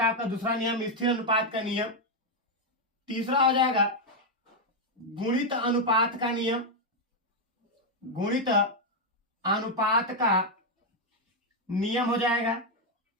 आपका दूसरा नियम, स्थिर अनुपात का नियम। तीसरा हो जाएगा गुणित अनुपात का नियम। गुणित अनुपात का नियम हो जाएगा।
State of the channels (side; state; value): both; normal; correlation 0.01